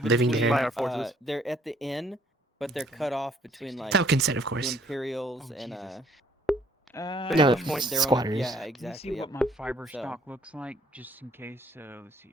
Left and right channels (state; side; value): normal; both; correlation 0.63